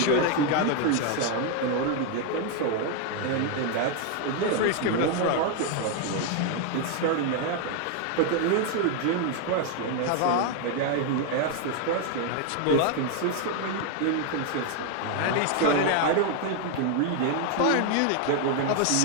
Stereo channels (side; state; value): both; different; correlation 0.01